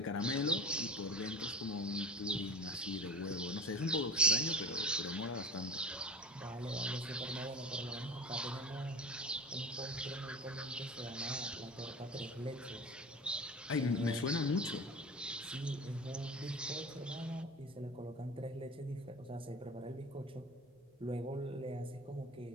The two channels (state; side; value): normal; both; correlation 0.34